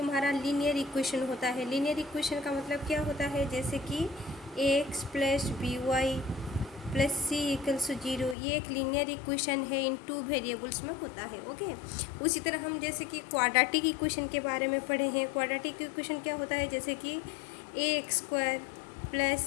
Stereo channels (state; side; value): drops out; right; at 8.3 s